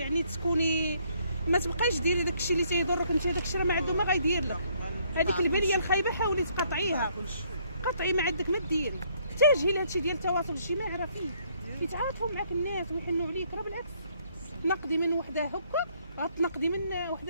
تكوني ما تبقايش ديري داكشي اللي تيضرك انت. داكشي راه ما عنده ما غيدير لك. هذيك البنيه الخايبه حاولي تقاطعيها، قطعي ما عندك ما ديري. احتاجي لهادشي ديال التواصل الاجتماعي، راه فيه كيتعاطفوا معاك الناس ويحنوا عليك. راه بالعكس، تنقدي من وحده هكا غتنقدي من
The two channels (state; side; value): inverted; both; correlation -0.67